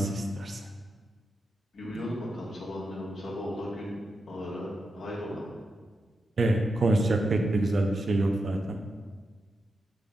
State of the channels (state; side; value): normal; both; correlation 0.87